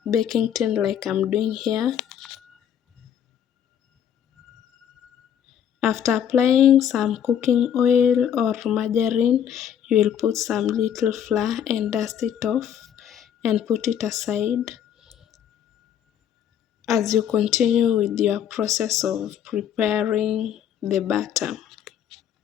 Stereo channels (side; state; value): right; quieter; 9.3 dB